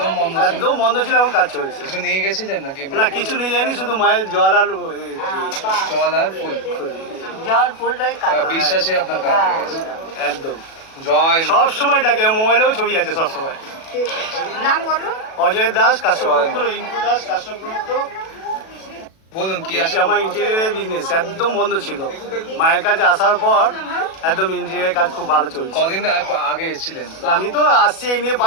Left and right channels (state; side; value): late; right; 37 ms